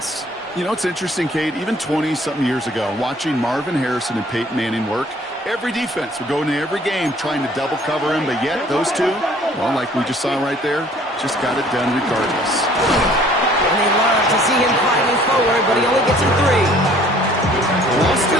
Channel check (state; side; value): normal; both; correlation 0.56